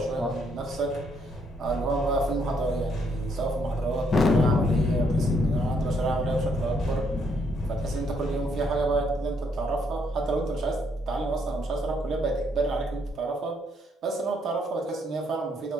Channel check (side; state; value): both; normal; correlation 0.72